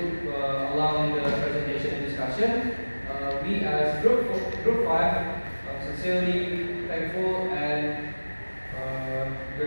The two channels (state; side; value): inverted; both; correlation -1.00